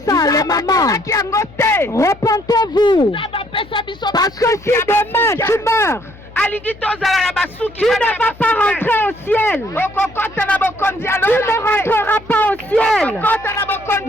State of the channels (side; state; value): left; noise; hum, 21 dB below the sound